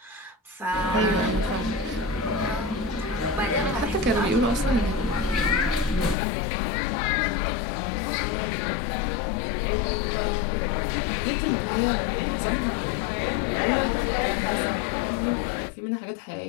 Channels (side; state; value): right; drops out; at 6.2 s